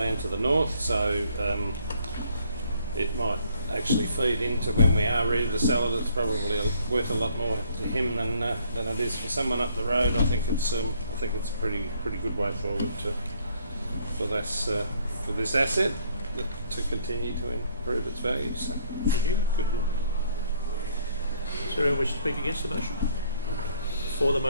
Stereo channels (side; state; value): both; inverted; correlation -0.64